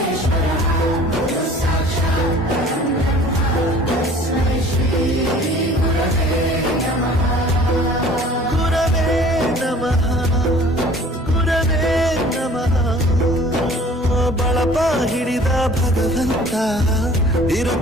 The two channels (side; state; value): both; normal; correlation 0.49